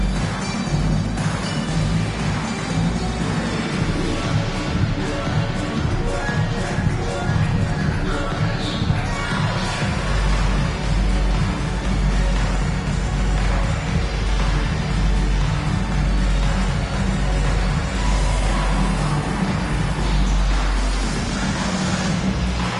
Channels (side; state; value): both; identical; correlation 1.00